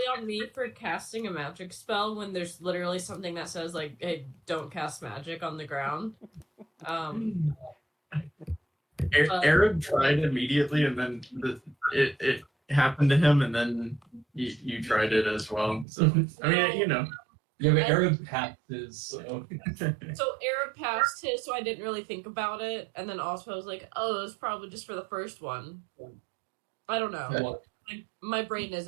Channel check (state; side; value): drops out; left; at 15.9 s